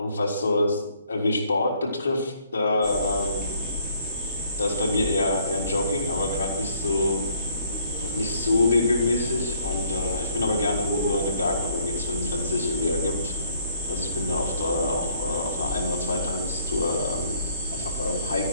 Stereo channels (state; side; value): inverted; both; correlation -0.64